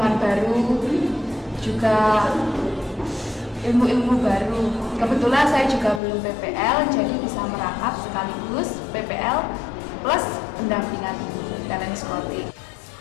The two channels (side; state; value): right; drops out; at 6.0 s